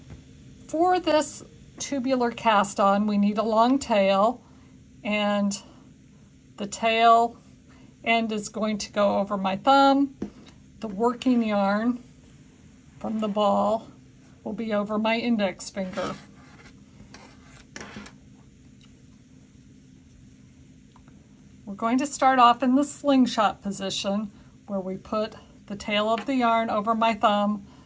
For this tubular cast on, we need a long tail, and the tail end is going to go over my thumb. The working yarn from the ball will be over my index finger. We're going to start off in the slingshot position where we put the tail of the yarn over my thumb,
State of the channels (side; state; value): both; identical; correlation 1.00